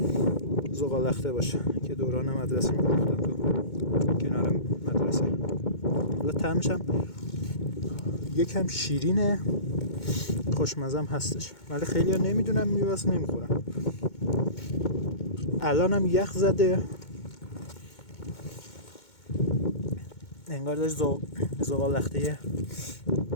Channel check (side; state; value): right; late; 2.2 ms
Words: زغالخته باشه که دوران مدرسه می‌رفتن تو کنار مدرسه. حالا طعمش هم یکم شیرینه، خوشمزه هم هستش، ولی خیلی ها نمیدونم میوه‌است نمیخورن. الان هم یخ زده، انگار داشت زغالخته